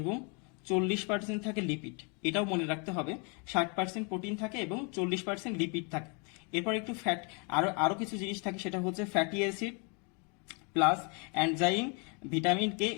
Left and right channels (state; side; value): quieter; right; 34.8 dB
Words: 40% থাকে লিপিড। এটাও মনে রাখতে হবে, 60% প্রোটিন থাকে এবং 40% লিপিড থাকে। এরপর একটু ফ্যাট, আরো কিছু জিনিস থাকে, সেটা হচ্ছে fatty acid plus enzyme, vitamin K